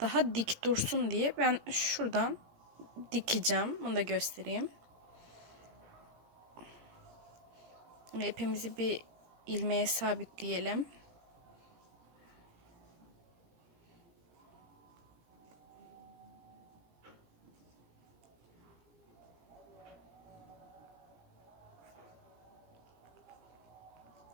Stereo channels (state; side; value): late; left; 17 ms